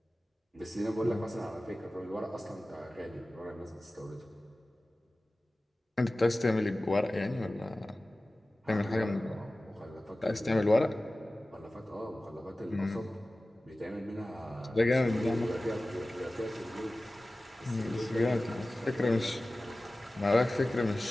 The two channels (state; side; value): normal; both; correlation 0.97